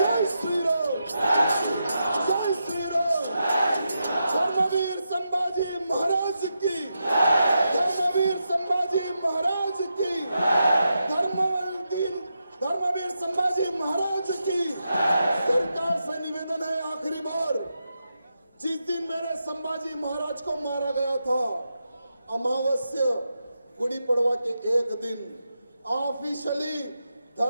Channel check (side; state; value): both; inverted; correlation -0.86